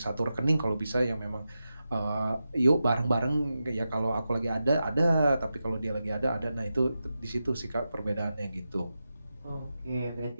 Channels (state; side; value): inverted; both; correlation -0.90